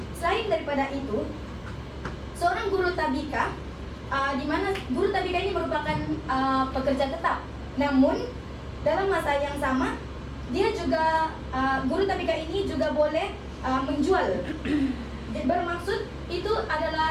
Selain daripada itu, seorang guru tabika, di mana guru tabika ini merupakan pekerja tetap, namun dalam masa yang sama dia juga guru tabika ini juga boleh menjual. Bermaksud itu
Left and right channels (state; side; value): identical; both; correlation 1.00